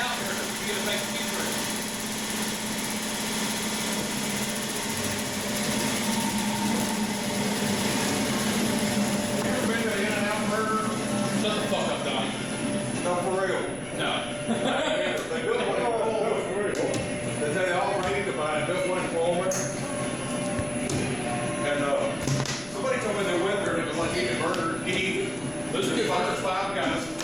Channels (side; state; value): left; noise; rumble, 19 dB below the sound